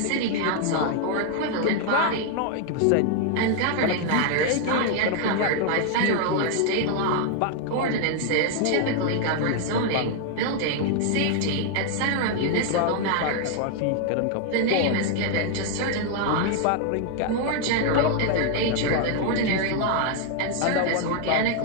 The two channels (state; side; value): different; both; correlation 0.00